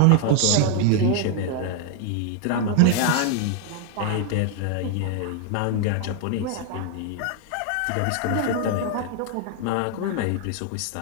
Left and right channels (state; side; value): different; both; correlation 0.00